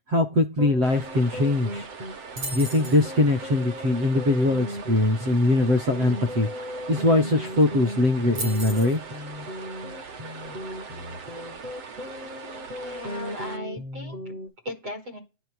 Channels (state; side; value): late; left; 7.8 ms